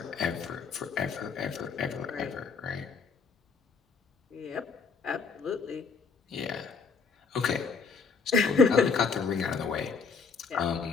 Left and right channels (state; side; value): quieter; right; 5.3 dB